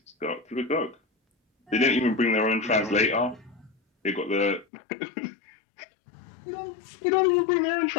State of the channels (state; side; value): drops out; right; at 4.7 s